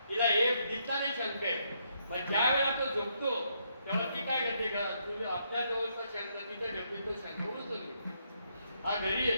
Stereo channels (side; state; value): both; inverted; correlation -0.75